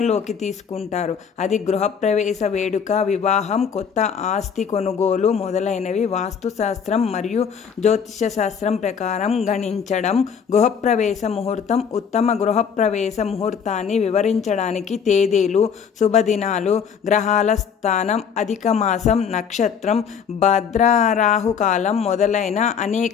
తీసుకుంటారు. అది గృహప్రవేశ వేడుక, వివాహం, కొత్త ఆస్తి కొనుగోలు మొదలైనవి వాస్తుశాస్త్రం మరియు జ్యోతిష శాస్త్రం ప్రకారం గణించడం. గృహప్రవేశ ముహూర్తం ఉత్తమ గృహప్రవేశ ముహూర్తాన్ని వివరించడానికి తేదీలు, శుభదినాలు, గ్రహాల స్థానం, అధిక మాసం, నక్షత్రం, భద్రరాహుకాలం మొదలైన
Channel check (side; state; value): right; quieter; 7.0 dB